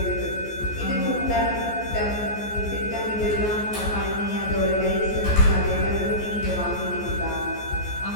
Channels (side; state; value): right; late; 14 ms